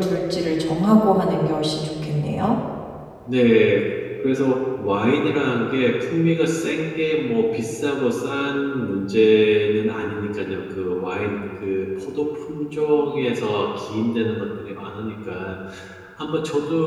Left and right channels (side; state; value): both; identical; correlation 1.00